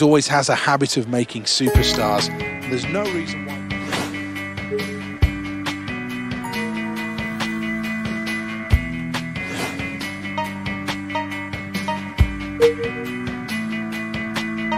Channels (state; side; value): identical; both; correlation 1.00